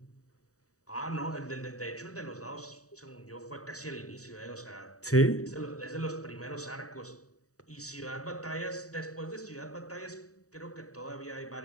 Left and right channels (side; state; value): right; late; 0.66 ms